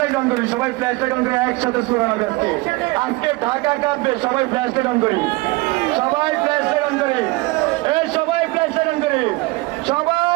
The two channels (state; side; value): quieter; left; 23.1 dB